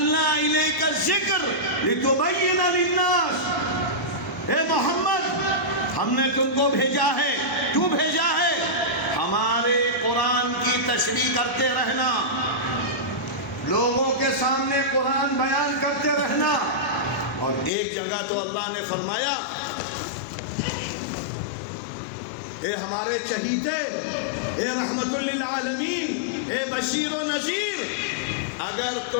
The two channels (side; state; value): right; drops out; at 17.7 s